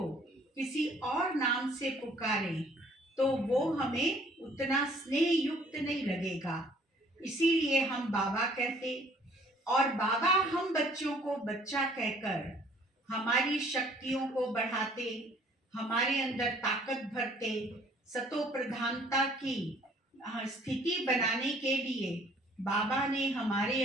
किसी और नाम से पुकारें तो वो हमें उतना स्नेह युक्त नहीं लगेगा। इसीलिए हम बाबा कहते और बाबा हम बच्चों को बच्चा कहकर हमारी शक्तियों को बढ़ाते, हमारे अंदर ताकत भरते, सतो प्रधानता की स्थिति बनाने के लिए बाबा ने हमारे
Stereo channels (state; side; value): normal; both; correlation 0.58